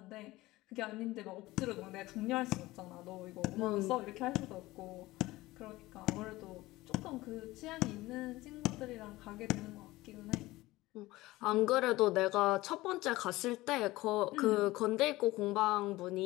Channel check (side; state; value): right; quieter; 18.8 dB